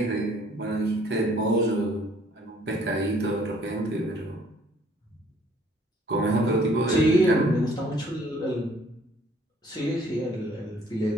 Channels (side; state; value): both; normal; correlation 0.59